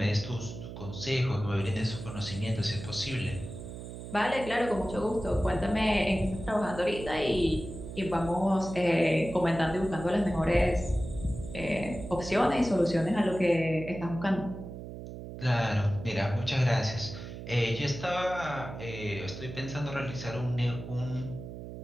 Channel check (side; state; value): right; noise; hum, 10 dB below the sound